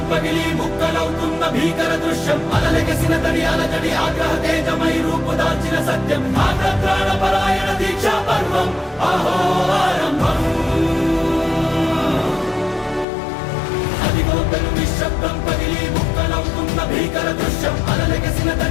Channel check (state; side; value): drops out; right; at 13.1 s